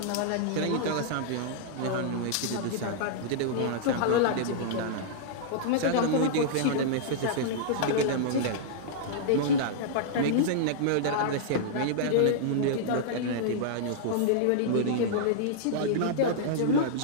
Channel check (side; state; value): both; different; correlation -0.02